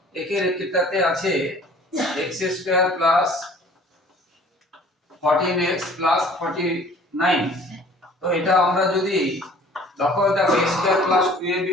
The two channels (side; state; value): both; normal; correlation 0.51